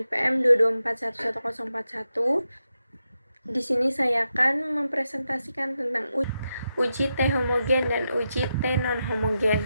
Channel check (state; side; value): inverted; both; correlation -0.87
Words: 224111041. Di sini saya akan mempresentasikan tentang uji T homogen dan uji T non homogen.